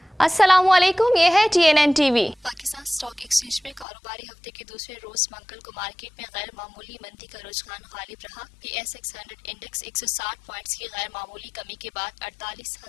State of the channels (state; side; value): drops out; right; at 3.9 s